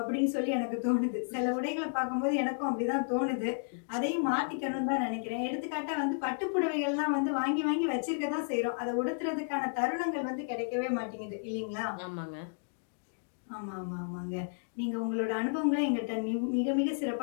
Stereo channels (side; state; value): right; silent; digital silence